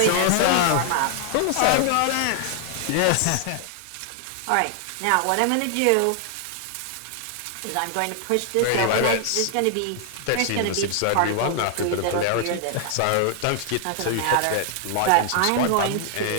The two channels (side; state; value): both; different; correlation 0.00